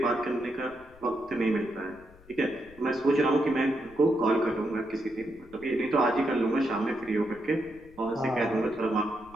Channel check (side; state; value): left; noise; rumble, 24 dB below the sound